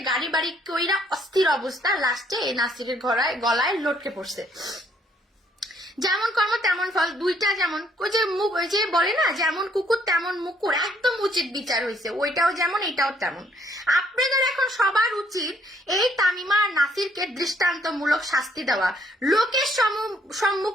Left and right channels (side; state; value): both; normal; correlation 0.67